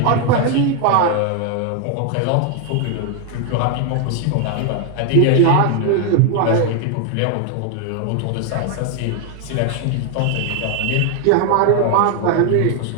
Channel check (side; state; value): both; different; correlation 0.01